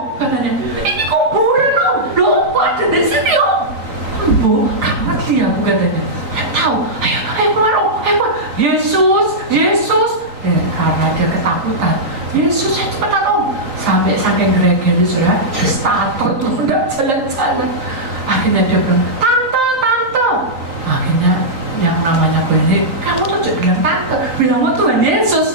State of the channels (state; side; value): late; left; 3.9 ms